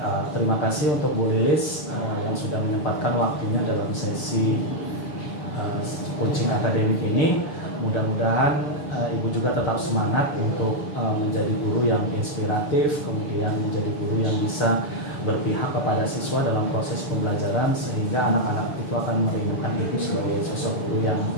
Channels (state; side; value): late; right; 6.8 ms